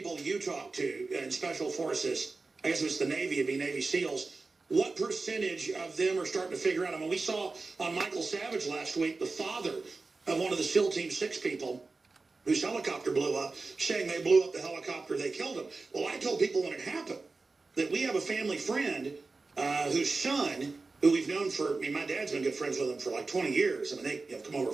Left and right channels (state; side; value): quieter; left; 3.8 dB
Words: you talk to in special forces, I guess it's the Navy, it'd be Navy SEALs, what percentage of them are starting to figure out? I mean, we saw on Michael Savage last week, the father of one of the SEAL Team 6 people, whose helicopter blew up, saying they blew up the helicopter, they killed him. Well, I told people when it happened that we have a family friend whose son, who we've known for, I mean, my dad's been good friends with him for like 20 years. I mean, they have come over